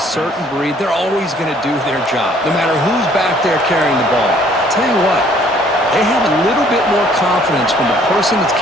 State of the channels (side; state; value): both; normal; correlation 0.60